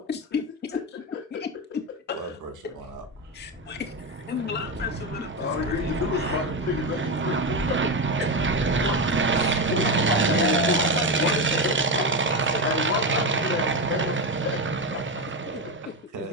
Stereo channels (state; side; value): normal; both; correlation 0.14